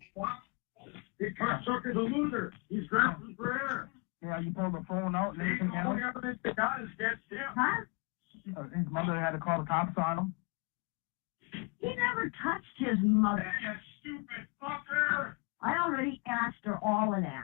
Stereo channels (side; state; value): right; quieter; 29.7 dB